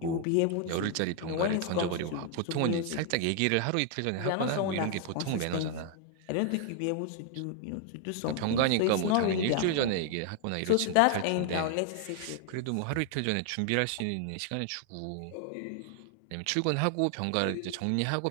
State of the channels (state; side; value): different; both; correlation 0.00